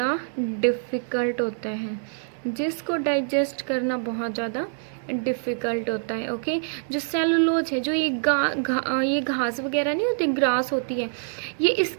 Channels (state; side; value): silent; left; digital silence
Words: डिफ़िकल्ट होता है। जिसको डाइजेस्ट करना बहुत ज़्यादा डिफ़िकल्ट होता है। ओके, जो सेलुलोज है, जो ये ये घास वगैरह नहीं होती, ग्रास होती है, ये